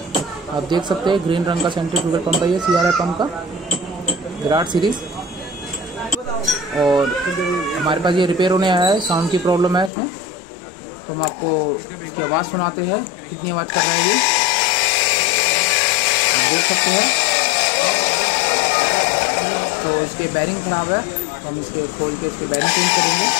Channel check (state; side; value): drops out; right; at 9.9 s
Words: आप देख सकते हैं ग्रीन रंग का सेंट्रीफ्यूगल पंप है ये सीआरआई पंप का, विराट सीरीज। और हमारे पास ये रिपेयर होने आया है, साउंड की प्रॉब्लम है इसमें, तो हम आपको इसकी आवाज़ सुनाते हैं कितनी आवाज़ कर रहा है ये, आप देख सकते हैं। तो इसके बैरिंग ख़राब है, तो हम इसके खोल के इसके बैरिंग चेंज करेंगे।